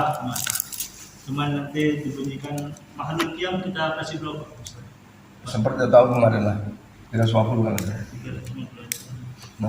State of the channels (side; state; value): both; identical; correlation 1.00